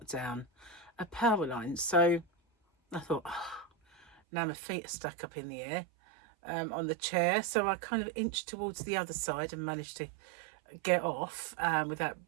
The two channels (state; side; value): drops out; left; at 4.2 s